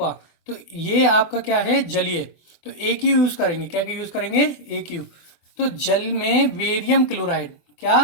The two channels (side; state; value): right; late; 24 ms